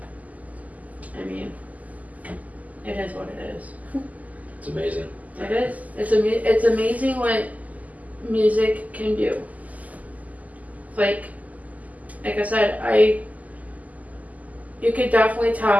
mean, it is what it is. It's amazing. It is. It's amazing what music can do. Like I said, you could definitely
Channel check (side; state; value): left; late; 0.076 ms